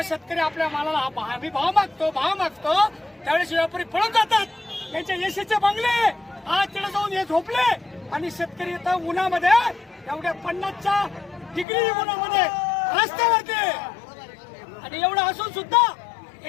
शेतकरी आपल्या मालाला आम्ही भाव मागतो त्यावेळेस व्यापारी पळून जातात. त्यांचे एसीचे बंगले आज तिथे जाऊन हे झोपले आणि शेतकरी इथं उन्हामध्ये एवढ्या 50च्या डिग्री उन्हामध्ये रस्त्यावरती. आणि एवढं असून सुद्धा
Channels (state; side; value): drops out; right; at 11.7 s